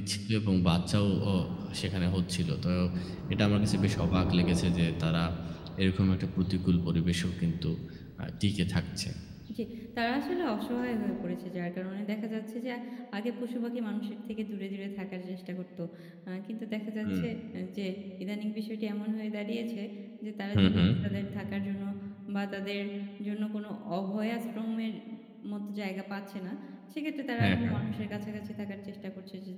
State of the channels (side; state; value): both; identical; correlation 1.00